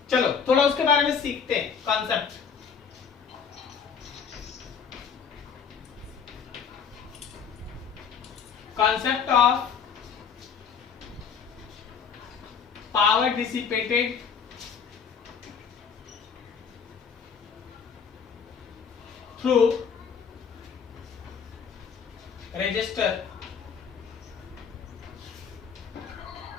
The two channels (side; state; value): right; quieter; 6.7 dB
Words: चलो थोड़ा उसके बारे में सीखते हैं concept. Concept of power dissipated through resistor।